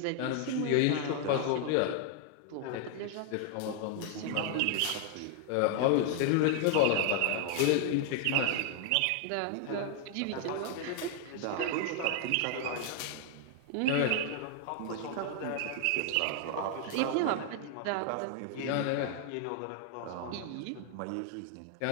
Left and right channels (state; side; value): different; both; correlation 0.00